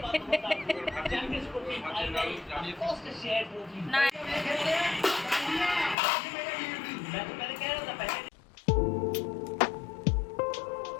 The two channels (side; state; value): right; drops out; at 6.0 s